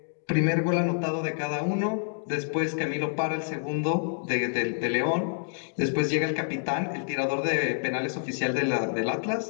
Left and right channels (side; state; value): right; silent; digital silence